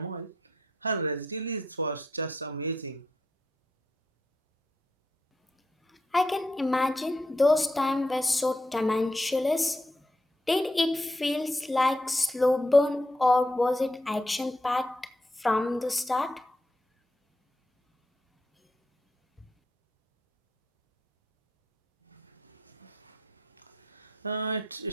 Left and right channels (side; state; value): both; normal; correlation 0.81